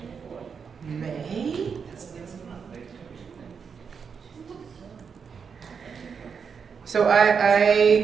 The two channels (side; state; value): left; quieter; 6.2 dB